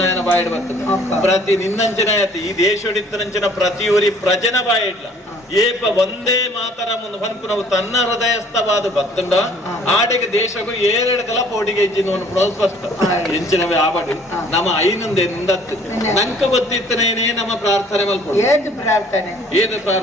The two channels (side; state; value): both; normal; correlation 0.56